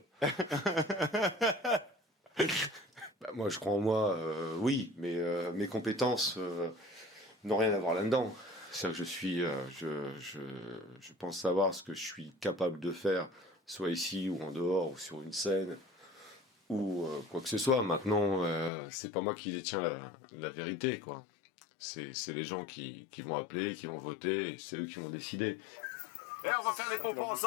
Bah, moi, je crois en moi, oui, mais mes compétences n'ont rien à voir là-dedans. C'est-à-dire que je pense savoir ce que je suis capable de faire, soit ici ou en dehors, ou sur une scène, ou quoi que ce soit. Maintenant, c'est pas moi qui détiens la vérité, quoi. C'est les gens qui vont appeler, qui vont voter, et c'est eux qui vont décider. Eh, on va faire les pompons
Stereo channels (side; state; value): right; drops out; at 18.7 s